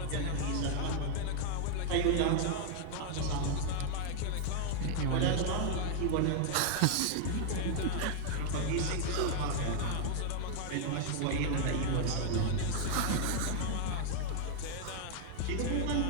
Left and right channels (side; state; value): both; different; correlation -0.01